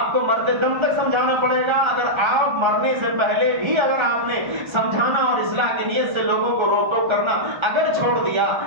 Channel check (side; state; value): left; late; 1.3 ms